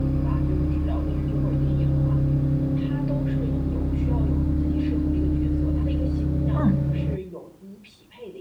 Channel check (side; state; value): both; identical; correlation 1.00